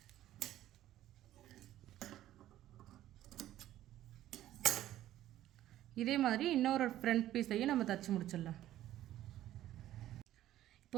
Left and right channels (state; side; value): quieter; left; 13.4 dB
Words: இதே மாதிரி இன்னொரு ஃப்ரண்ட் பீஸையும் நம்ம தச்சு முடிச்சிடலாம்.